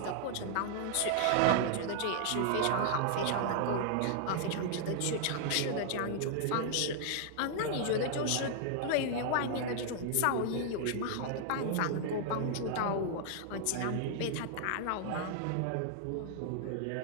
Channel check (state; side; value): different; both; correlation -0.01